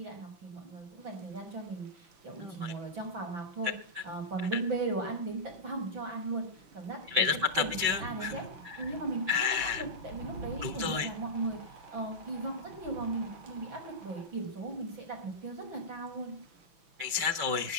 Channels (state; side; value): late; left; 5.9 ms